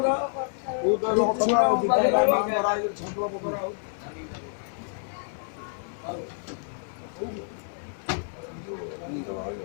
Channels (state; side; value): silent; right; digital silence